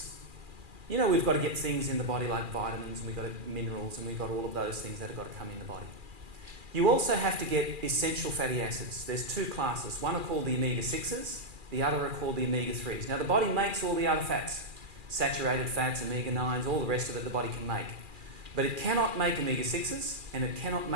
We've got to get things in the body like vitamins, and we've got minerals, and we've got all of those things that have got to come in the body. You also have to get essential fatty acids. There's two classes. One are called the omega-6s, the other are called the omega-3s. Now, the body makes all the other fats, saturated fats, omega-9s, all the rest of it the body can make. But it cannot make omega-6s, and it cannot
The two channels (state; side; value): late; left; 2.4 ms